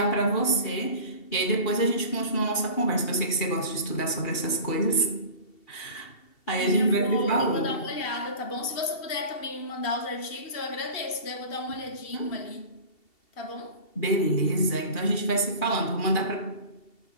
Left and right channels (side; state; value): right; late; 2.7 ms